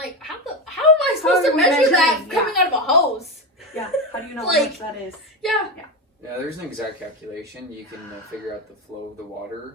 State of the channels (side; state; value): both; normal; correlation 0.16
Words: how am I supposed to measure that coming out of a hose? Yeah. How do you know Like, how much that is? Yeah. Yeah, there's an exact calculation. You can figure out the flow of the water.